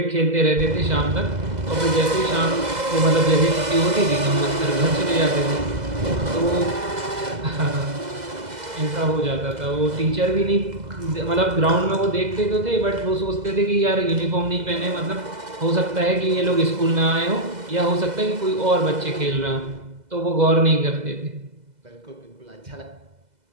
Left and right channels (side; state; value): left; late; 2.0 ms